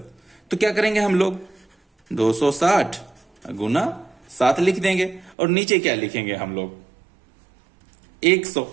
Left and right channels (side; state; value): left; drops out; at 5.4 s